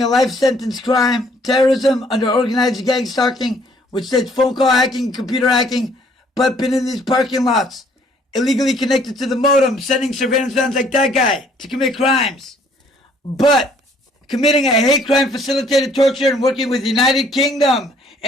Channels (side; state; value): both; normal; correlation 0.62